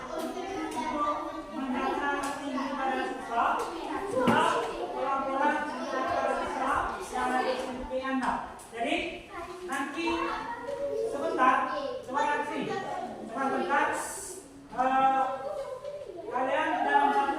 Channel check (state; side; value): identical; both; correlation 1.00